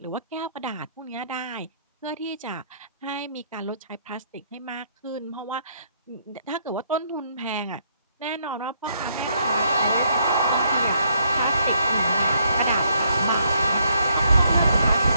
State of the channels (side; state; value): both; inverted; correlation -0.71